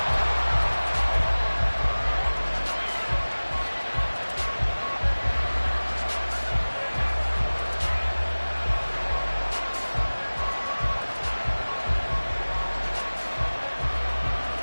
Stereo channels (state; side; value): inverted; both; correlation -1.00